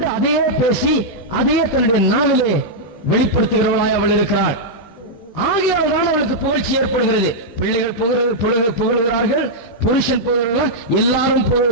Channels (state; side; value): late; right; 17 ms